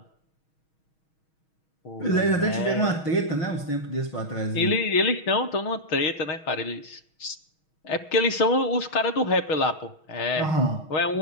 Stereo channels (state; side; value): late; right; 6.3 ms